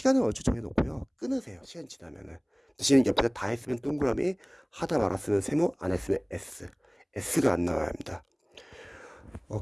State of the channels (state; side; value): identical; both; correlation 1.00